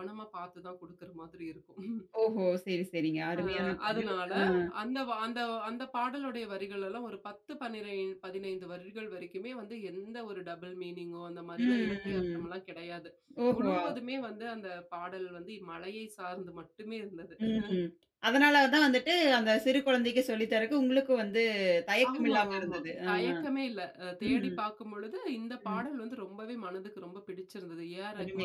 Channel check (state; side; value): identical; both; correlation 1.00